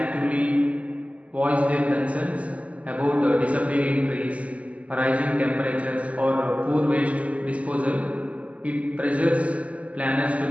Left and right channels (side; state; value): left; late; 0.067 ms